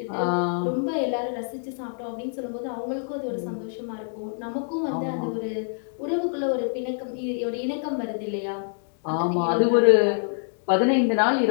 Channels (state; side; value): silent; right; digital silence